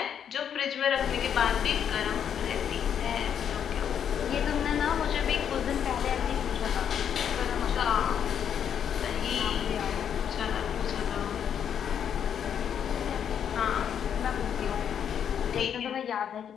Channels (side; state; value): right; quieter; 8.5 dB